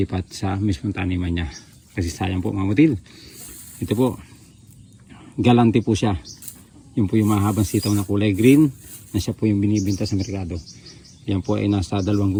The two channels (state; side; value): identical; both; correlation 1.00